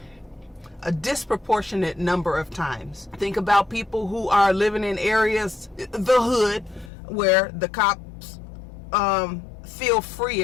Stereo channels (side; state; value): right; drops out; at 6.9 s